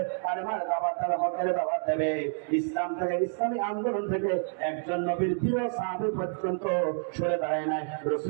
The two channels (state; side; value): silent; left; 59 dB below the other